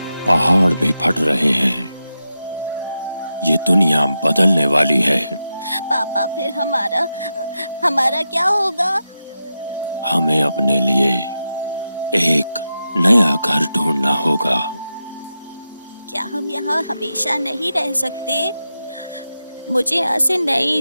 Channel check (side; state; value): both; inverted; correlation -0.89